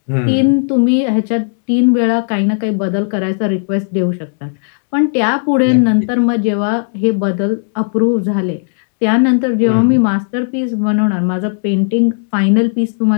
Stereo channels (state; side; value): silent; right; digital silence